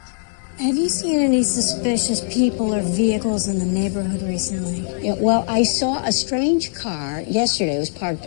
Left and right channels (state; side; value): silent; right; digital silence